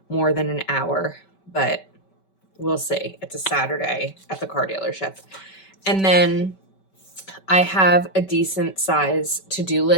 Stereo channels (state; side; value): late; right; 5.2 ms